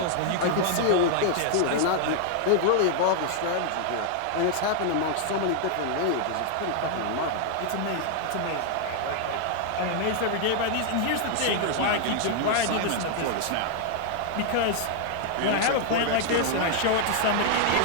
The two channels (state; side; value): different; both; correlation 0.00